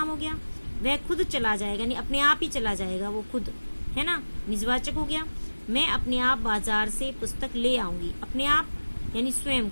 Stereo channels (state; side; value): inverted; both; correlation -1.00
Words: हो गया। वह खुद चला जाएगा, यानी अपने आप ही चला जाएगा, वो खुद है ना, निजवाचक हो गया। मैं अपने आप बाजार से पुस्तक ले आऊंगी, अपने आप यानी स्वयं